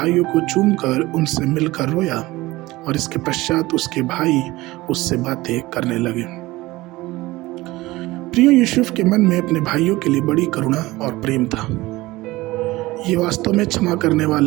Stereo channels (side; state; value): left; quieter; 19.4 dB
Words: को चूमकर उनसे मिलकर रोया और इसके पश्चात उसके भाई उससे बातें करने लगे। प्रियो, यूसुफ के मन में अपने भाइयों के लिए बड़ी करुणा और प्रेम था। ये वास्तव में क्षमा करने